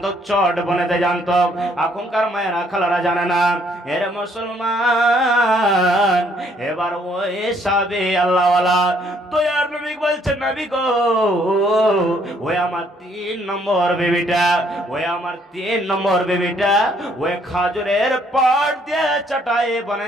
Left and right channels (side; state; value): both; normal; correlation 0.66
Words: চট বনেতে জানতো। এখনকার মায়েরা খালারা জানে না। এর মুসলমান, এবার ওই সাহাবী আল্লাহওয়ালা দয়ার নবী বলছেন, নবী গো ওই আমার 3 নম্বর বেবিটা, ওই আমার 3 নম্বর বেবিটা ওই খাজুরের পাট দিয়ে চাটাই